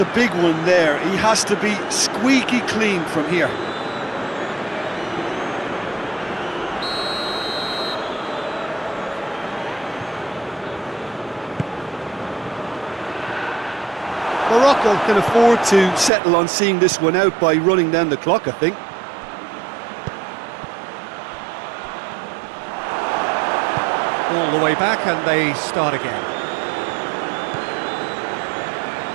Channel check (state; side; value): drops out; left; at 16.1 s